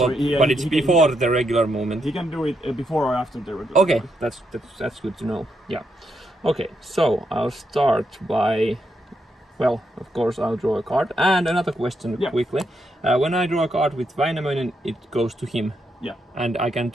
it's before the regular movement. He can do it before or after the regular. Okay, that's good to know. Yeah. Okay, so I'll start by, well, of course I'll draw a card. And another question quickly. When I draw a card with Väinämöinen, it goes to him. Yeah. And I can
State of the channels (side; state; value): both; normal; correlation 0.80